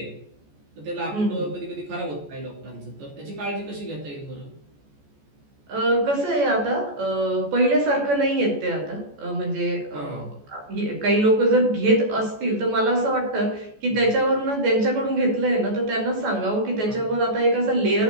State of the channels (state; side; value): late; left; 14 ms